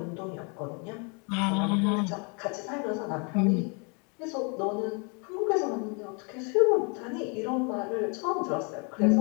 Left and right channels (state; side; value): quieter; right; 34.3 dB